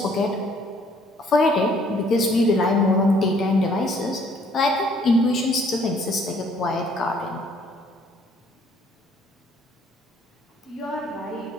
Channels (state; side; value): normal; both; correlation 0.62